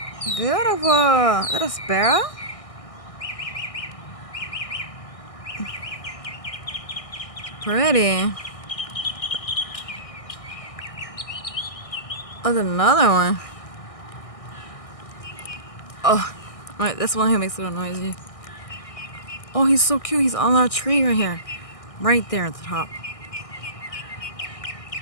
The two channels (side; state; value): right; late; 1.6 ms